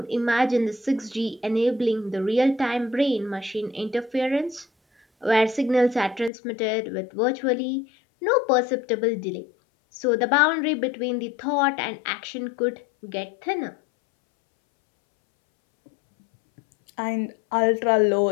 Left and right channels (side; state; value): right; drops out; at 6.3 s